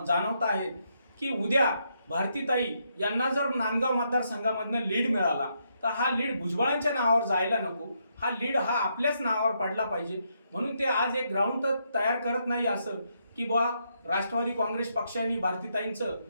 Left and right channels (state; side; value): inverted; both; correlation -0.78